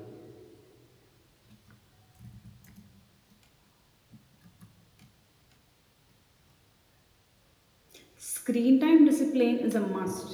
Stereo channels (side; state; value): both; identical; correlation 1.00